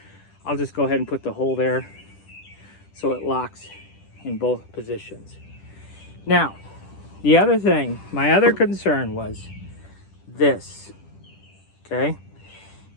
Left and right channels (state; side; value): late; right; 10 ms